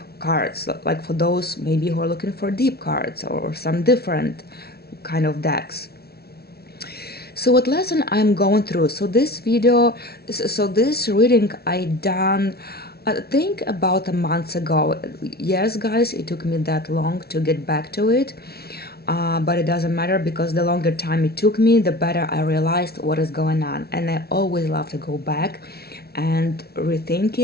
cards, like for those maybe who are looking for deep cards or some different kind of decks. So what lesson I'm going through? So this reading I done, I think about a month ago. Yes, guys, it took me that long to get back to it, but it doesn't matter, because the longer time it took me, the better I realized what is going on. And I always love to go back and rethink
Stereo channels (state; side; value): late; right; 0.45 ms